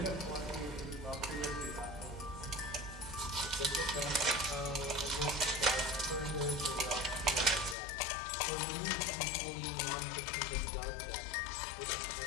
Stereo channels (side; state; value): right; drops out; at 7.8 s